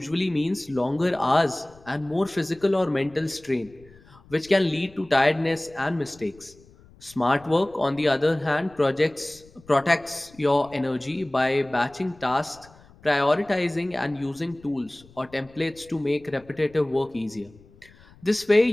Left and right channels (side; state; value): left; noise; rumble, 26 dB below the sound